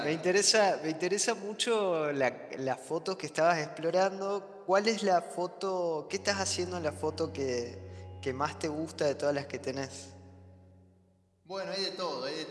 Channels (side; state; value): both; identical; correlation 1.00